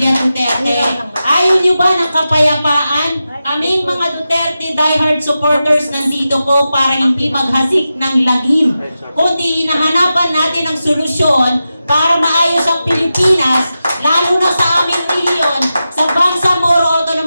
Duterte? Ayaw nyo ba ng kapayapaan? Aming mga Duterte diehard supporters nandito po para hindi maghasik ng lagim, kundi hinahanapan natin ang solusyon para maayos ang Pilipinas, lalo na sa aming rehiyon, sa Bangsamoro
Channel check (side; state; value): both; inverted; correlation -0.92